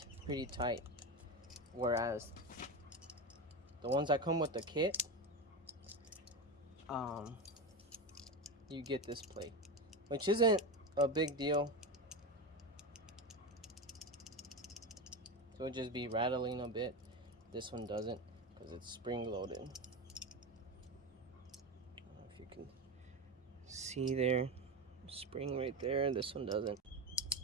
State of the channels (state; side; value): normal; both; correlation 0.18